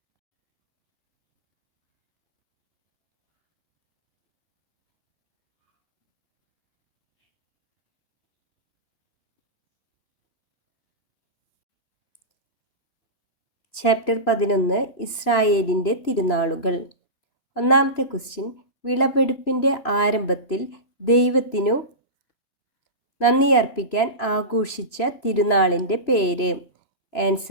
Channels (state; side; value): late; right; 3.0 ms